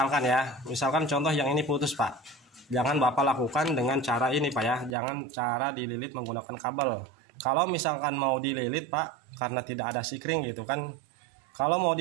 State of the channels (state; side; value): drops out; left; at 5.0 s